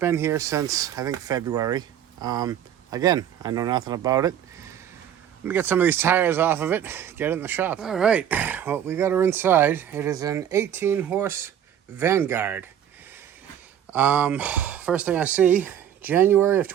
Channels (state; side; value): quieter; left; 9.8 dB